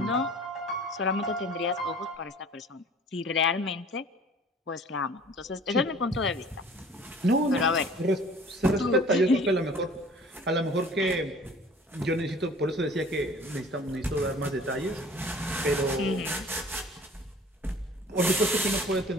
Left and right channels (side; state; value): both; normal; correlation 0.48